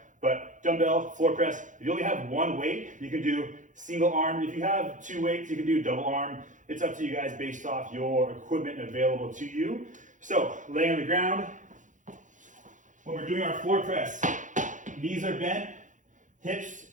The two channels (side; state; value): left; late; 0.37 ms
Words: But dumbbell floor press, if you only have one weight, you can do single arm. If you have 2 weights, you can do double arm. It's up to you guys based off your equipment available to you. So, lay on the ground. When we're doing our floor press, knees are bent, hips,